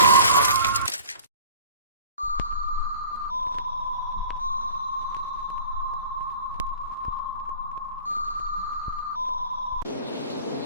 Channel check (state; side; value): inverted; both; correlation -0.44